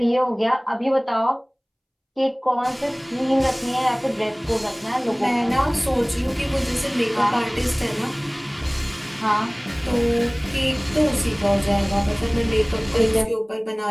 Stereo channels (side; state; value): both; identical; correlation 1.00